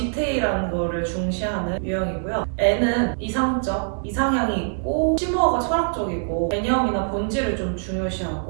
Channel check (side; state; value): left; silent; digital silence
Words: 거를 중시하는 유형이고요. N은 이상적, 이상향이 있고 심오하고 철학적이고 개념이나 본질을 좀